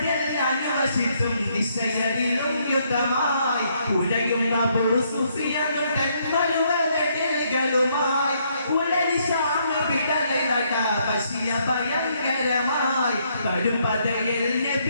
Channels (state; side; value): inverted; both; correlation -0.72